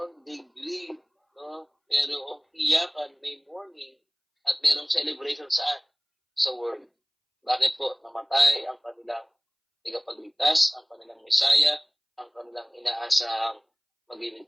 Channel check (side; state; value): both; identical; correlation 1.00